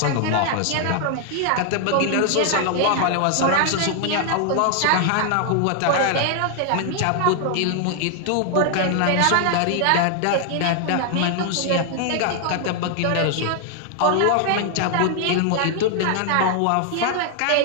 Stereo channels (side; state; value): both; different; correlation 0.00